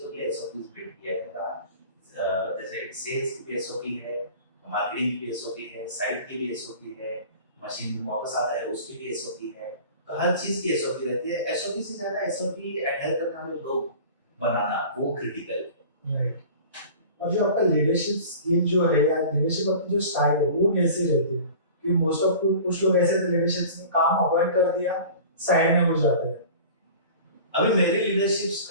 के एसओपीज बिल्ड किया है मेरा। जैसे सेल्स की भी एसओपी है, मार्केटिंग की भी एसओपी है, साइट की भी एसओपी है, मशीन वापस आता है उसकी भी एसओपी है। तो हर चीज की एसओपी रहती है। एसओपी से ज्यादा एसओपी एडहेयर करने वाले लोग बनाना वो क्रिटिकल है। राइट। और जो आपका लीडरशिप स्किल जो है या लीडरशिप आपकी जो स्टाइल है वो कैसे रहती है? कि मोस्ट ऑफ कुछ लोग ऐसे लीडरशिप में काम अवॉइड कर दिया, साइड में हो जाते हैं। अभी मेरी लीडरशिप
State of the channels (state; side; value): inverted; both; correlation -0.41